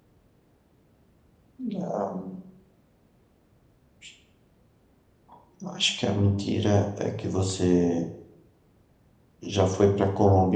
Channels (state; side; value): identical; both; correlation 1.00